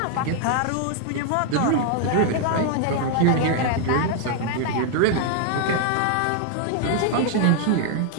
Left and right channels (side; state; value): both; different; correlation 0.00